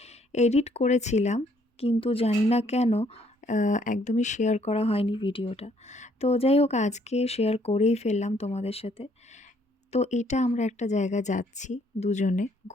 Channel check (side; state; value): both; normal; correlation 0.66